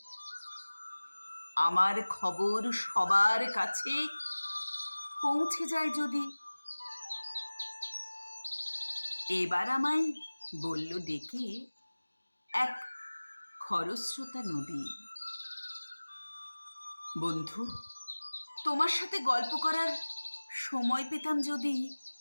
আমার খবর সবার কাছে পৌঁছে যায় যদি। এবার আমায় বলল ডেকে এক খরস্রোতা নদী, বন্ধু, তোমার সাথে গল্প করার সময় পেতাম যদি।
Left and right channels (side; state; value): both; inverted; correlation -1.00